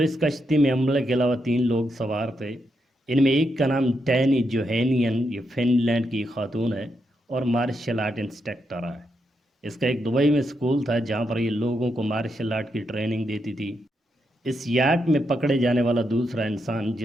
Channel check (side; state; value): both; normal; correlation 0.82